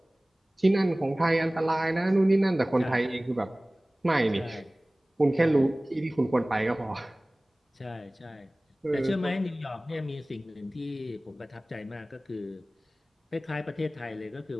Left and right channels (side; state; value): both; normal; correlation 0.98